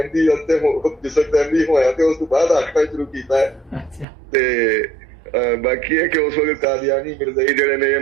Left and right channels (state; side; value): drops out; left; at 4.0 s